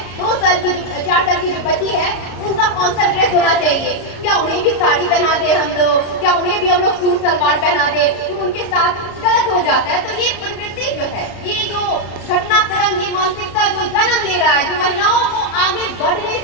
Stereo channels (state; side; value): late; right; 33 ms